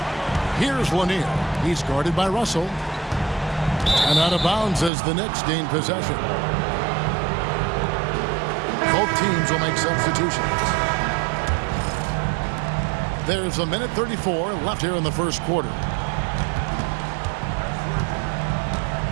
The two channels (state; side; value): drops out; left; at 4.9 s